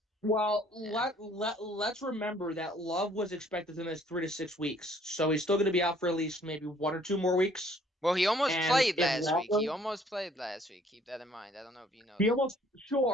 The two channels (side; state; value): both; normal; correlation 0.60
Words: Well, Yeah. let's remember that Love was expected to miss 3 to 6 weeks, so he's still going to be out for at least maybe 1 or 2 more weeks. Well, he almost And played if last week. He Waller, almost played last week. Keep that in mind. I don't know if you know he that. almost